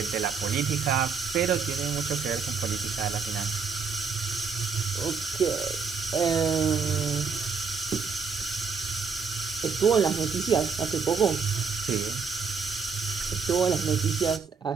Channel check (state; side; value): quieter; left; 5.5 dB